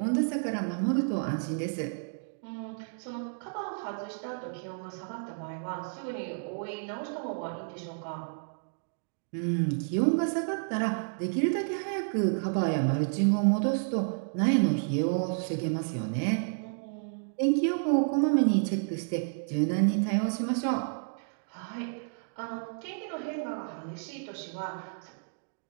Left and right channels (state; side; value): silent; left; digital silence